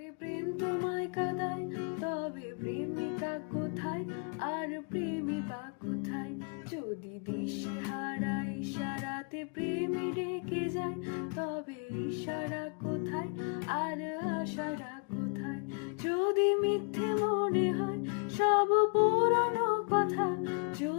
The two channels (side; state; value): right; quieter; 38.4 dB